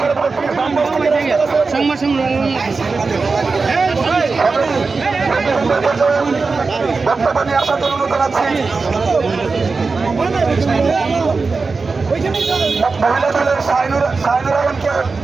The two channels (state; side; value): quieter; left; 4.3 dB